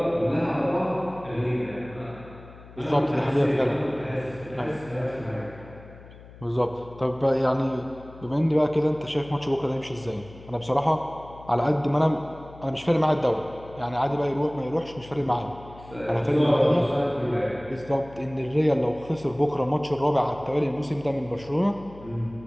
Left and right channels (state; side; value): noise; left; hum, 19 dB below the sound